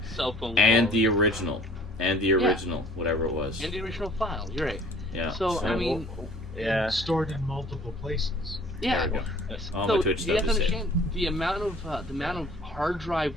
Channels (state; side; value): normal; both; correlation 0.52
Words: and the original, whatever it was, and the original file. You're right. Yeah. So I mean, stored in multiple places. Yeah. All so my Twitch you have to stuff is understand the amount of hard drive